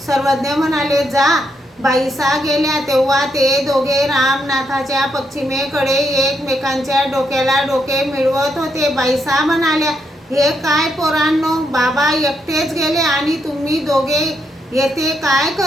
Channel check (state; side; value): normal; both; correlation 0.78